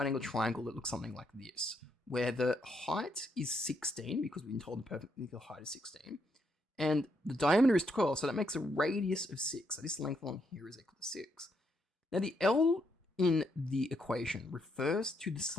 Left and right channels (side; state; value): both; normal; correlation 0.76